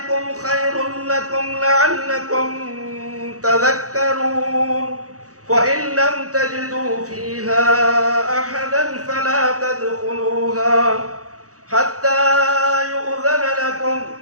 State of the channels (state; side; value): late; left; 0.66 ms